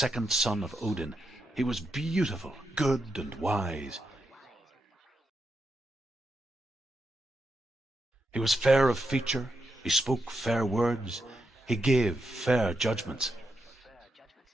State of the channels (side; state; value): both; normal; correlation 0.84